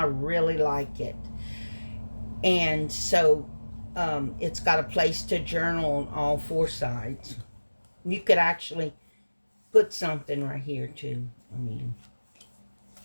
really like it. And so it's got a place to journal on all four sides. You could actually put something right here too.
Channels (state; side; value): inverted; both; correlation -1.00